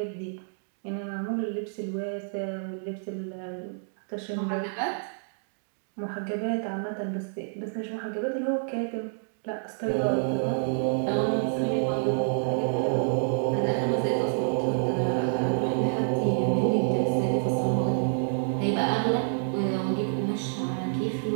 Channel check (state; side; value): silent; left; digital silence